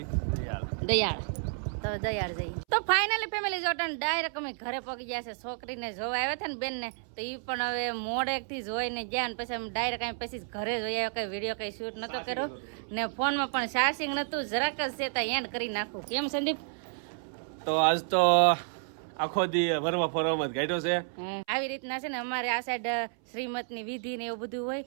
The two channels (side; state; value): left; silent; 57 dB below the other